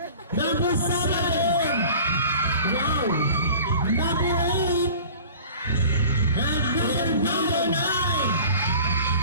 Number 7. Wow. Number 8. And number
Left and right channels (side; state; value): both; inverted; correlation -0.43